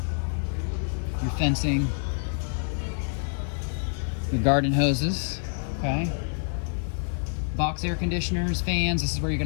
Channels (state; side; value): silent; right; digital silence